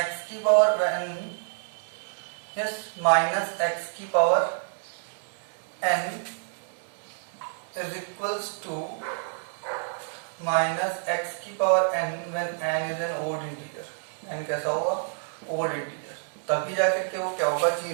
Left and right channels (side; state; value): left; silent; digital silence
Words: की पावर n माइनस x की power n is equals to minus x की power n when n is an odd integer. n कैसा होगा? Odd integer. तभी जाकर के वो क्या होगा?